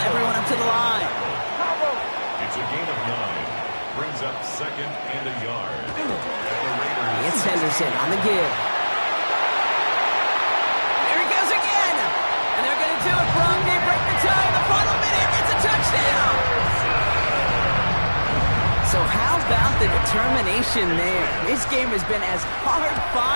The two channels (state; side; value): inverted; both; correlation -1.00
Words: up to the line. It's a gain of 9. Brings up second and a yard. And the Raiders. It's Henderson on the give. There he goes again. And they're going to do it, Brock. They break the tie in the final minute. It's a touchdown. So how about the determination there? This game has been as hard